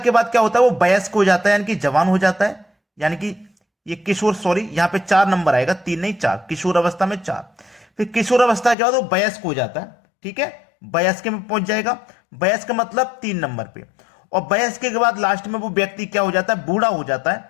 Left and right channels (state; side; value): drops out; right; at 8.8 s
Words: बाद क्या होता है, वो वयस्क हो जाता है, यानी कि जवान हो जाता है, यानी कि ये किशोर, सॉरी यहां पे 4 नंबर आएगा, 3 नहीं 4, किशोर अवस्था में 4। फिर किशोर अवस्था के बाद वो वयस्क हो जाता है, ठीक है, वयस्क में पहुंच जाएगा। वयस्क मतलब 3 नंबर पे। और वयस्क के बाद लास्ट में वो व्यक्ति क्या हो जाता है, बूढ़ा हो जाता है,